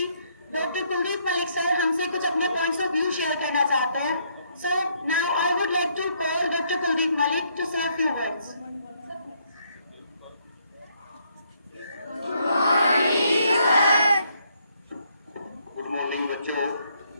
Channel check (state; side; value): inverted; both; correlation -0.71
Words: डॉक्टर कुलदीप मलिक सर हमसे कुछ अपने पॉइंट्स ऑफ व्यू शेयर करना चाहते हैं। So now I would like to call doctor Kuldeep Malik to say few words. Good morning बच्चों,